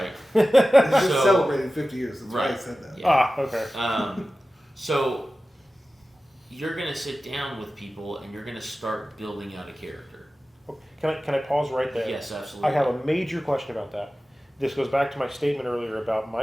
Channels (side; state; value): both; normal; correlation 0.95